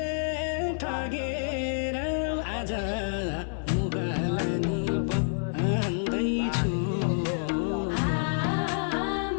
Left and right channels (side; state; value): right; silent; 59 dB below the other